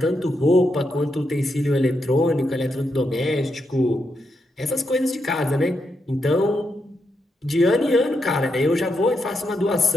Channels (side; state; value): both; normal; correlation 0.82